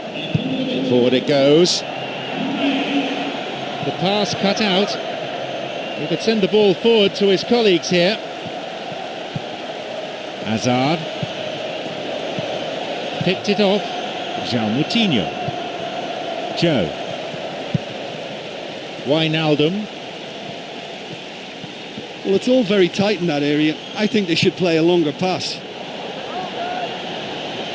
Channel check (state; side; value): identical; both; correlation 1.00